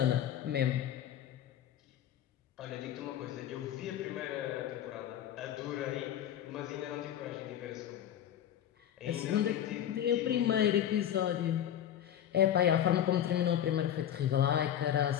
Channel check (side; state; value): right; quieter; 10.5 dB